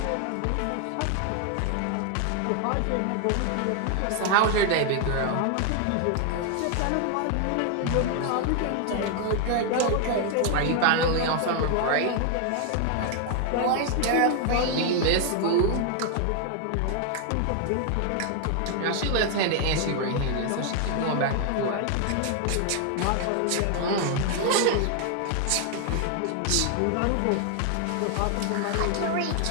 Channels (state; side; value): different; both; correlation 0.00